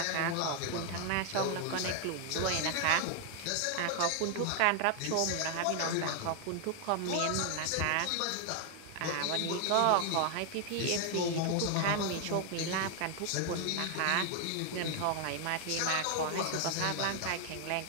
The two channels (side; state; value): both; different; correlation 0.00